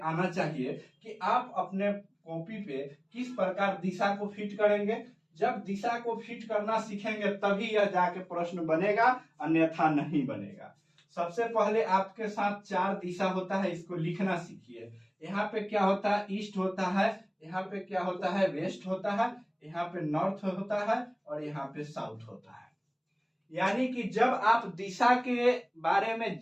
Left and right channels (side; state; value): both; identical; correlation 1.00